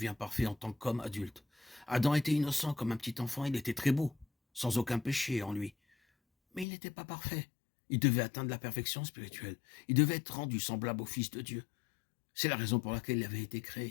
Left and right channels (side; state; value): right; drops out; at 6.7 s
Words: parfait en tant qu'homme adulte. Adam était innocent comme un petit enfant, il était très beau, sans aucun péché en lui. Mais il n'était pas parfait. Il devait atteindre la perfection spirituelle. Il devait être rendu semblable au Fils de Dieu. C'est la raison pour laquelle il avait été